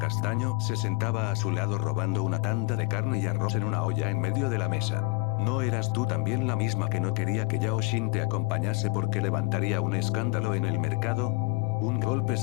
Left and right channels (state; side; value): quieter; right; 27.0 dB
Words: se sentaba a su lado robando una tanda de carne y arroz en una olla en medio de la mesa. ¿No eras tú también la misma que no quería que Yao Xin te acompañase porque levantaría un escándalo en el mercado? Un golpe